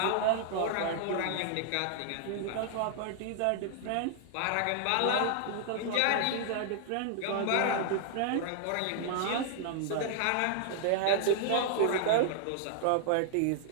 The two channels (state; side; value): different; both; correlation 0.00